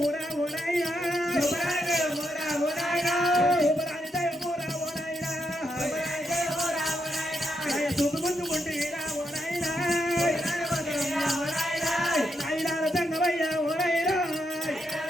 ఓ నాయనా సూపరాని దయమూరా ఓ నాయనా సూపు ముందుకుంటేరా ఓ నాయనా నాయనాల తంగవయ్య ఓ నాయనా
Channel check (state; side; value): normal; both; correlation 0.81